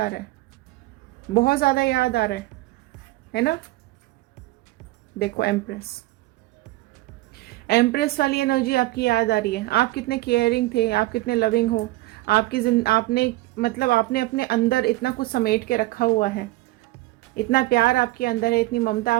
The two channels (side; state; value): left; quieter; 19.3 dB